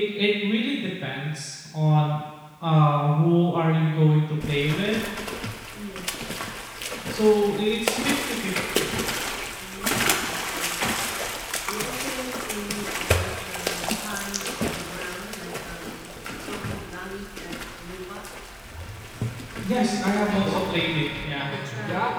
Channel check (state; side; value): identical; both; correlation 1.00